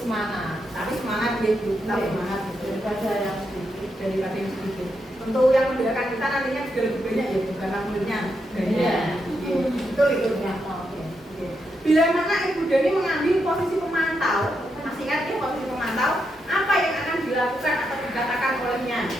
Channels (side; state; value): both; normal; correlation 0.83